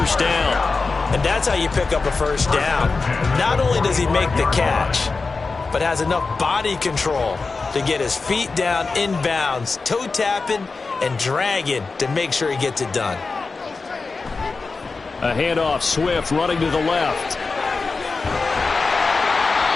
down. And that's how you pick up a first down. Not only does he make the catch, but has enough body control to get his feet down inbounds, toe tapping and dragging to make sure he gets it done. A handoff, Swift running to the left.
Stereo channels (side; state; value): right; quieter; 4.1 dB